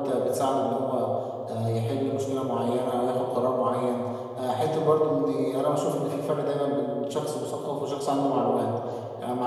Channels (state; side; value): identical; both; correlation 1.00